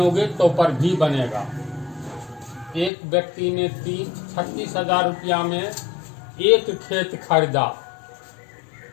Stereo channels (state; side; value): drops out; right; at 2.9 s